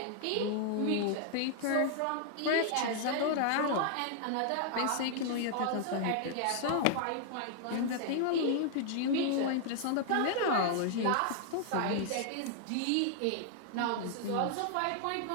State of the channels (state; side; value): different; both; correlation 0.00